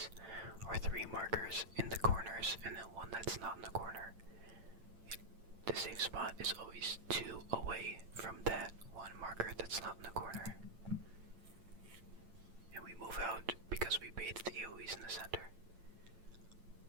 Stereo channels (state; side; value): late; left; 8.9 ms